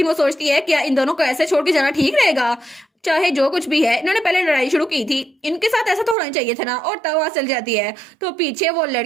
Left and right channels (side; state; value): left; drops out; at 6.2 s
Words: वो सोचती है क्या इन दोनों को ऐसे छोड़ के जाना ठीक रहेगा। चाहे जो कुछ भी है इन्होंने पहले लड़ाई शुरू की थी, इनके साथ ऐसा तो होना चाहिए था ना। और तब वहां चल जाती है। तो पीछे वो